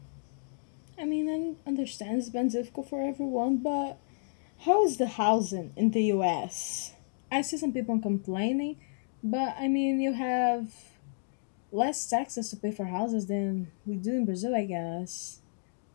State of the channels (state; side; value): silent; right; digital silence